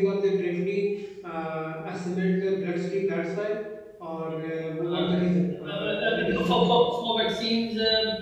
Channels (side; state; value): both; identical; correlation 1.00